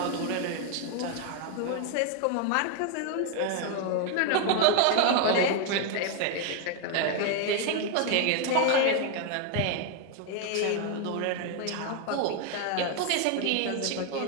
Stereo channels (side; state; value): both; different; correlation 0.01